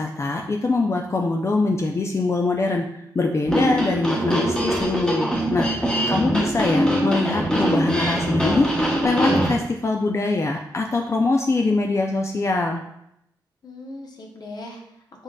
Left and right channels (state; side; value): normal; both; correlation 0.82